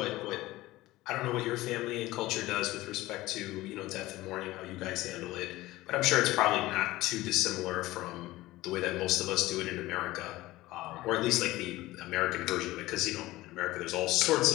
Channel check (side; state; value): right; quieter; 17.9 dB